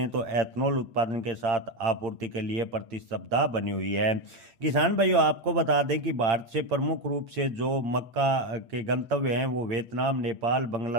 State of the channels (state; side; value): late; left; 8.8 ms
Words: तो एथनॉल उत्पादन के साथ आपूर्ति के लिए प्रतिस्पर्धा बनी हुई है। किसान भाइयों, आपको बता दें कि भारत से प्रमुख रूप से जो मक्का के गंतव्य हैं वो वियतनाम, नेपाल,